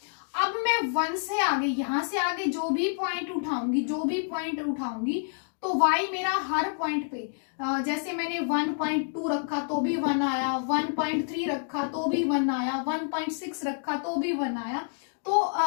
अब मैं 1 से आगे, यहां से आगे जो भी पॉइंट उठाऊंगी तो y मेरा हर पॉइंट पे, जैसे मैंने 1.2 रखा तो भी 1 आया, 1.3 रखा तो भी 1 आया, 1.6 रखा तो भी 1 आया। तो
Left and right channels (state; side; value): silent; right; digital silence